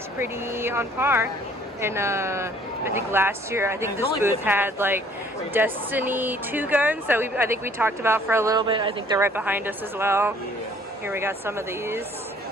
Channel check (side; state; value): both; normal; correlation 0.58